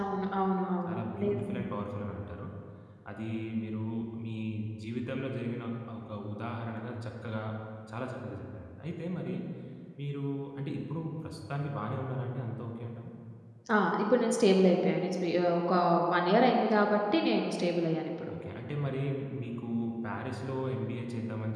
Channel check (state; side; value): identical; both; correlation 1.00